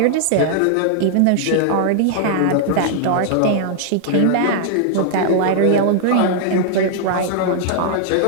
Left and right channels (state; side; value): different; both; correlation -0.01